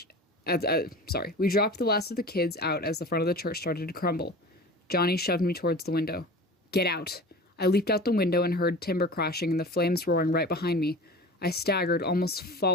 We dropped the last of the kids out as the front of the church started to crumble. Johnny shoved me towards the window. "Get out!" I leaped out the window and heard timber crashing and the flames roaring right behind me. I staggered, almost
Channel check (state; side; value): normal; both; correlation 0.37